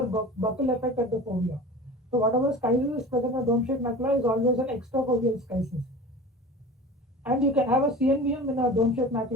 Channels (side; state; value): both; normal; correlation 0.36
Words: buckle effect at the fovea. So whatever schisis is present in dome-shaped macula is always an extrafoveal schisis. And you can have a CNVM in a dome-shaped